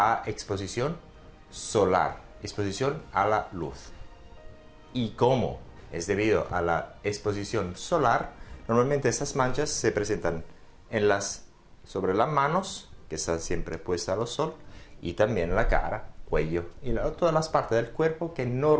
exposición solar, exposición a la luz. Y como es debido a la exposición solar, normalmente estas manchas se presentan sobre las manos, que están siempre puestas al sol, y también en la cara, cuello y todas las partes del cuerpo que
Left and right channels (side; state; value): both; identical; correlation 1.00